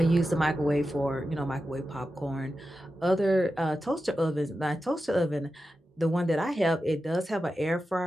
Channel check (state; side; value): normal; both; correlation 0.91